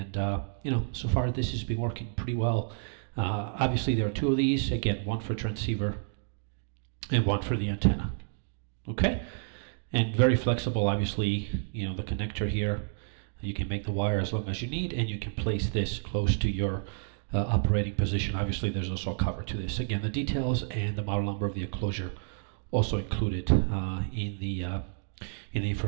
you know, so far this has been working pretty well. Obviously there are 2 of these, again, one for transceiver and one for the antenna. Okay, and very flexible. Obviously, you know, the connector here, you can make the wire as long as you need, and you can place this close to your operating position. Obviously there's also a cover to this. Again, the details and the model number of the enclosure also included in the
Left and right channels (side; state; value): left; silent; digital silence